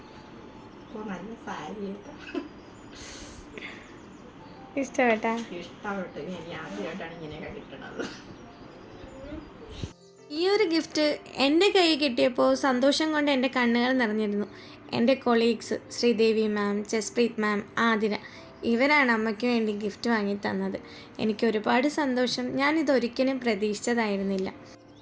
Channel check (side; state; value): both; identical; correlation 1.00